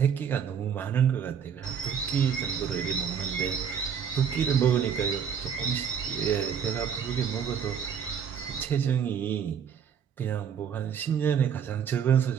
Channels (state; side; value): quieter; left; 7.6 dB